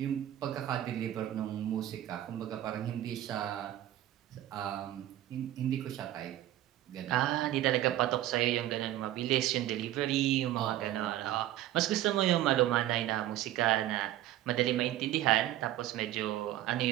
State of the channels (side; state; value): left; quieter; 13.6 dB